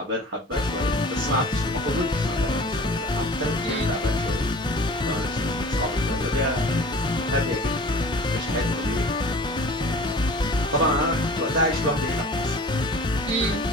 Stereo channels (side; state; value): both; normal; correlation 0.43